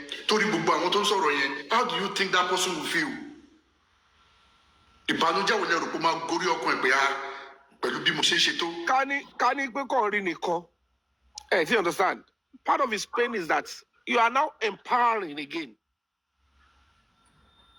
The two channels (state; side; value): identical; both; correlation 1.00